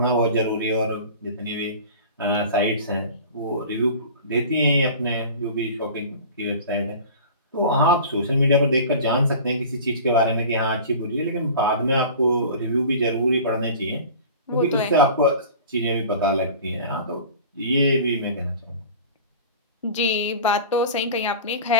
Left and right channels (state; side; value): inverted; both; correlation -0.39